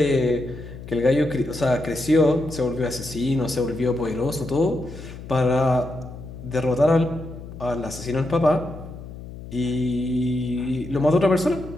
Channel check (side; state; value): left; noise; hum, 13 dB below the sound